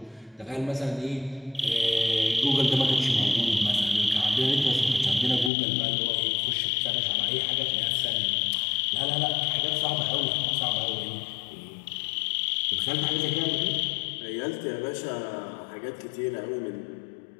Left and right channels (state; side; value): drops out; right; at 5.5 s